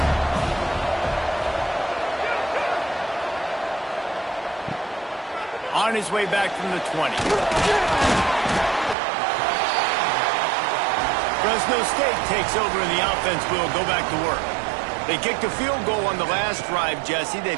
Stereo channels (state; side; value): drops out; left; at 9.0 s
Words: On his way back from the 20. Fresno State takes over and the offense will go back to work. They kicked a field goal on the last drive, Jesse. They've